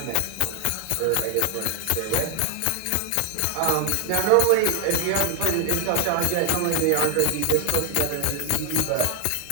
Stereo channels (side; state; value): both; different; correlation 0.00